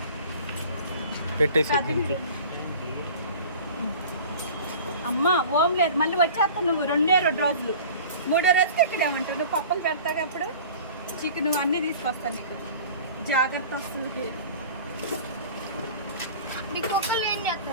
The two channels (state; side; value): inverted; both; correlation -0.42